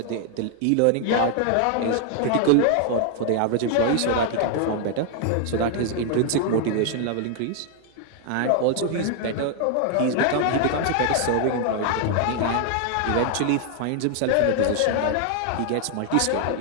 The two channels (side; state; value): both; different; correlation 0.00